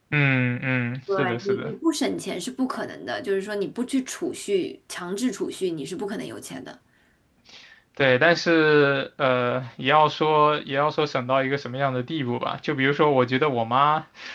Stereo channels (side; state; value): both; identical; correlation 1.00